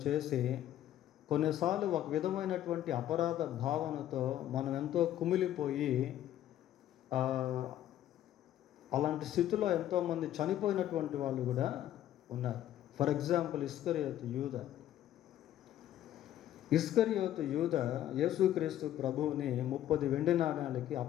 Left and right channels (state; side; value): quieter; right; 12.2 dB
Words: చేసి కొన్నిసార్లు ఒక విధమైనటువంటి అపరాధ భావనతో మనం ఎంతో కుమిలిపోయి అలాంటి స్థితిలో ఎంతోమంది చనిపోయినటువంటి వాళ్ళు కూడా ఉన్నారు. ఫర్ ఎగ్జాంపుల్ ఇస్కరియోతు యూద యేసుక్రీస్తు ప్రభువుని 30 వెండి నాణాలకి